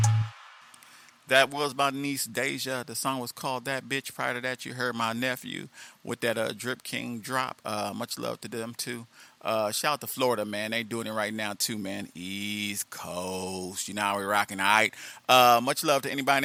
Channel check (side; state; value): both; identical; correlation 1.00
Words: That was my niece Deja. The song was called That Bitch. Prior to that, you heard my nephew with that Drip King drop. Much love to them too. Shout out to Florida, man. They doing it right now too, man. East Coast. You know how we rocking, all right? Much love to anybody and